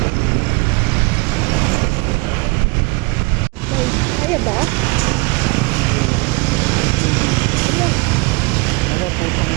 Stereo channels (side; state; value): left; quieter; 26.9 dB